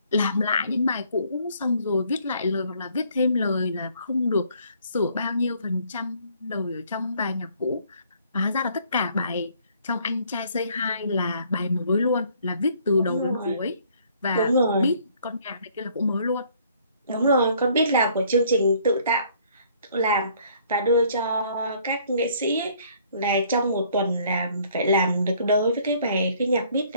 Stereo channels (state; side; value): inverted; both; correlation -0.61